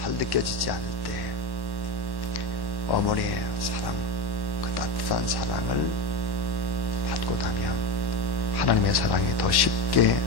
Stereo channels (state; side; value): late; right; 1.1 ms